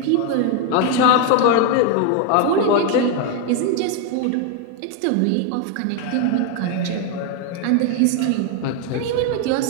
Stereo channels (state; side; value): different; both; correlation 0.01